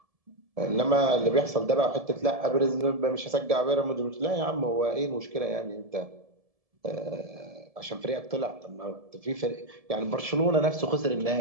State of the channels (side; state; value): left; late; 1.7 ms